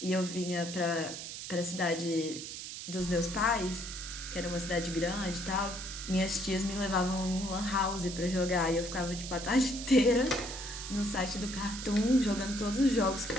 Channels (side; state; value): right; noise; hiss, 8 dB below the sound